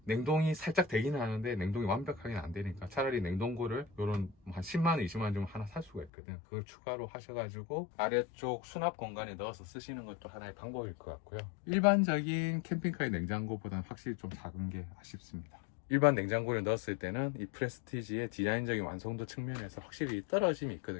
냉동이 살짝 되기는 하는데 냉동이 완벽하게는 안 되니까 차라리 냉동고를 요런 한 10만원, 20만원 좀 하나 살 수가 있거든. 그걸 추가로 하셔가지고 아래쪽 수납 공간에 넣어서 쓰시는 것도 하나의 방법일 것 같고요. 일반적인 캠핑카의 냉장고보다는 확실히 좀 작은 게 아쉽습니다. 일반 냉장고를 넣었을 때는 이 프레스티지의 디자인적인 완성도 측면에서 확실히 떨어짐이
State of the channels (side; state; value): right; drops out; at 6.1 s